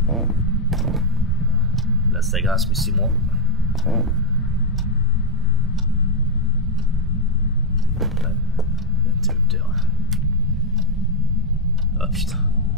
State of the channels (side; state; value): both; normal; correlation 0.01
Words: Là ça grince mais c'est moi. L'interrupteur. Ah putain.